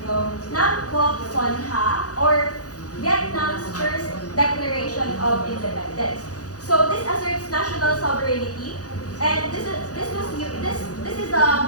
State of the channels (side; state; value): right; late; 0.67 ms